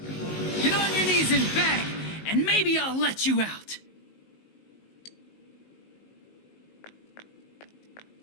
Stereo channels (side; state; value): right; late; 19 ms